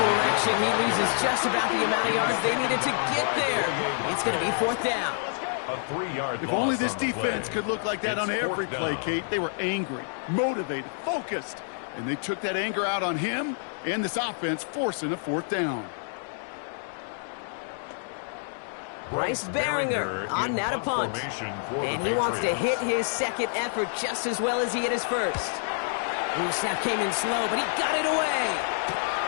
He loses just about the amount of yards they needed to get there. It's going to be 4th down. If only this defense could look like that on every play, Kate. They were angry, motivated, focused, and they took that anger out on him and this offense, forcing a 4th down. Bryce Baringer on now to punt. And he wants to hit his second effort just as well as he hit his first. Ooh, snap came in slow, but he got it away.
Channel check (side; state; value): right; silent; digital silence